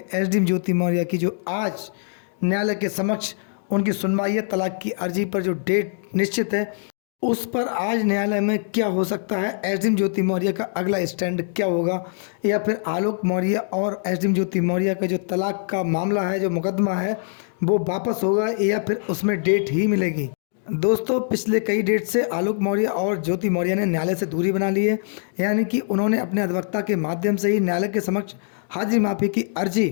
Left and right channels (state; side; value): silent; right; digital silence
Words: एसडीएम ज्योति मौर्य की, जो आज न्यायालय के समक्ष उनकी सुनवाई है। तलाक की अर्जी पर जो डेट निश्चित है उस पर आज न्यायालय में क्या हो सकता है, एसडीएम ज्योति मौर्य का अगला स्टैंड क्या होगा, या फिर आलोक मौर्य और एसडीएम ज्योति मौर्य का जो तलाक का मामला है, जो मुकदमा है, वो वापस होगा या फिर उसमें डेट ही मिलेगी। दोस्तों, पिछले कई डेट से आलोक मौर्य और ज्योति मौर्य ने न्यायालय से दूरी बना ली है, यानी कि उन्होंने अपने अधिवक्ता के माध्यम से ही न्यायालय के समक्ष हाजिरी माफी की अर्जी